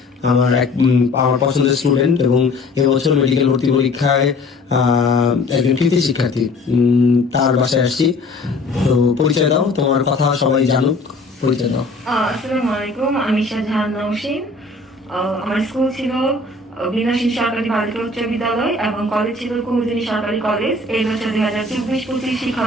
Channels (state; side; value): quieter; right; 3.2 dB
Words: আমার পছন্দের স্টুডেন্ট এবং এবছর মেডিকেল ভর্তি পরীক্ষায় একজন কৃতি শিক্ষার্থী, তার বাসায় আসছি। তো পরিচয় দাও, তোমার কথা সবাই জানুক, পরিচয় দাও। আসসালামু আলাইকুম, আমি শাহজাহান নওশিন। আমার স্কুল ছিল বিনাশী সরকারি বালিকা উচ্চ বিদ্যালয় এবং কলেজ ছিল কুমুদিনী সরকারি কলেজ। এই বছর 2024-25